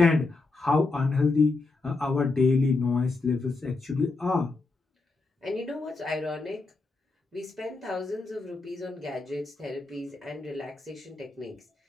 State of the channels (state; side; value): quieter; right; 3.6 dB